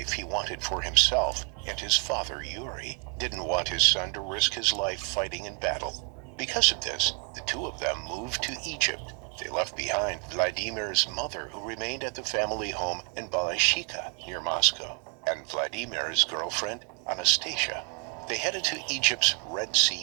he wanted for himself, and his father, Yuri, didn't want his son to risk his life fighting in battle. Because of this, the two of them moved to Egypt. They left behind Vladimir's mother, who remained at the family home in Balashika, near Moscow, and Vladimir's girlfriend, Anastasia. They headed to Egypt's Red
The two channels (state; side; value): quieter; left; 34.0 dB